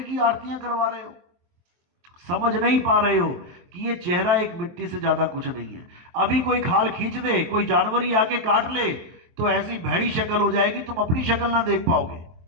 की आरतियां करवा रहे हो। समझ नहीं पा रहे हो कि ये चेहरा एक मिट्टी से ज्यादा कुछ नहीं है। अभी कोई खाल खींच दे, कोई जानवर ही आके काट ले तो ऐसी भैड़ी शक्ल हो जाएगी तुम अपनी शक्ल ना देख पाओगे।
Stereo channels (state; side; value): late; left; 23 ms